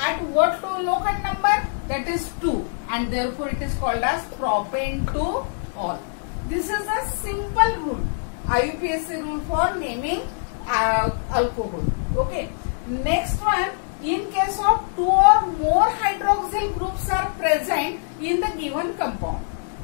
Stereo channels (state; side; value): silent; right; 63 dB below the other